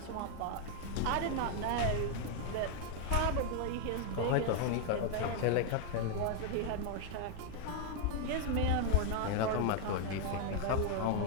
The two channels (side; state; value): both; different; correlation 0.01